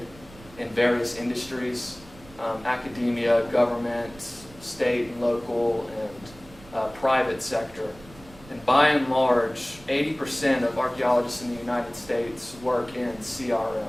in various industries, academia, government, state and local, and private sector. And by and large, 80% of archaeologists in the United States work in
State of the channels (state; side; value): noise; right; rumble, 21 dB below the sound